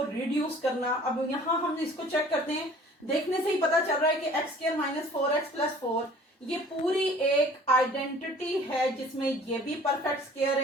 रिड्यूस करना। अब यहाँ हम इसको चेक करते हैं, देखने से ही पता चल रहा है कि x square minus 4x plus 4 ये पूरी एक आइडेंटिटी है जिसमें ये भी परफेक्ट स्क्वायर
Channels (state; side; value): normal; both; correlation 0.50